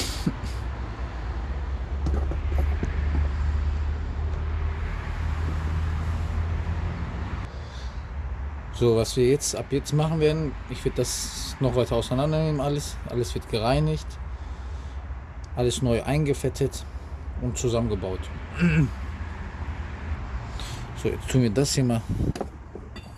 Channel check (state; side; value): identical; both; correlation 1.00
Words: So, was wir jetzt ab jetzt machen werden, ich werde das noch weiter auseinandernehmen, alles wird gereinigt, alles neu eingefettet und zusammengebaut. So, jetzt tun wir das hier mal